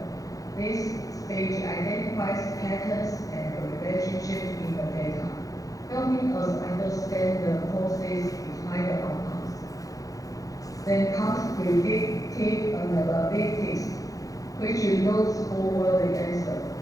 This stage identifies patterns and relationships in the data, helping us understand the causes behind the outcomes. Then comes predictive analytics, which looks forward the answer,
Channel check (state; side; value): late; right; 0.17 ms